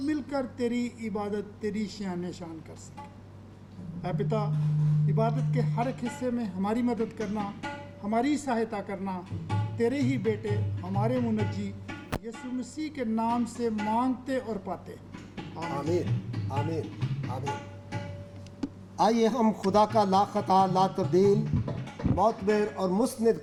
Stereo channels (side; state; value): both; identical; correlation 1.00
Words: मिलकर तेरी इबादत, तेरी शान शान कर सकें। ऐ पिता, इबादत के हर एक हिस्से में हमारी मदद करना, हमारी सहायता करना, तेरे ही बेटे हमारे मुनज्जी यीशु मसीह के नाम से मांगते और पाते। आमीन आमीन आमीन। आइए हम खुदा का ला खता ला तब्दील मोतबर और मुस्निद